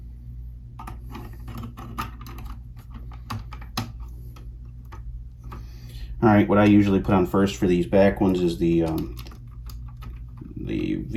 Alright, what I usually put on first for these back ones is the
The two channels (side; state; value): both; identical; correlation 1.00